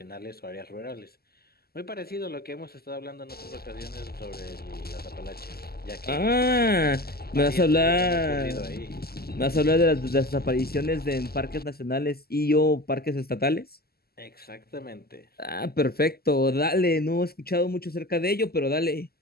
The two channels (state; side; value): late; right; 0.45 ms